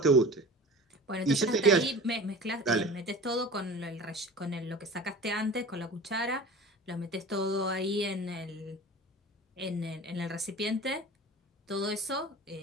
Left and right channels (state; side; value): normal; both; correlation 0.38